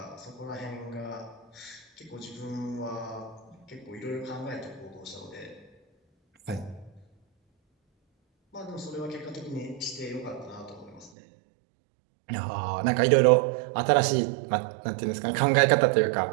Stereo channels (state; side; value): drops out; left; at 11.1 s